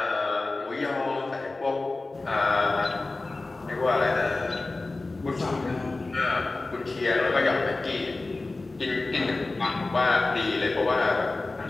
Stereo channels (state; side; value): quieter; right; 3.3 dB